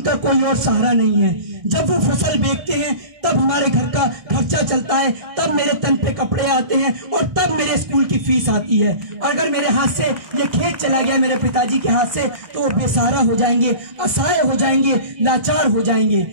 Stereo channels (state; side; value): late; left; 1.6 ms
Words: कोई और सहारा नहीं है। जब वो फसल बेचते हैं तब हमारे घर का खर्चा चलता है, तब मेरे तन पे कपड़े आते हैं और तब मेरे स्कूल की फीस आती है। अगर मेरे हाथ से ये खेत चला गया मेरे पिताजी के हाथ से तो वो बेसहारा हो जाएंगे, असहाय हो जाएंगे, लाचार हो जाएंगे।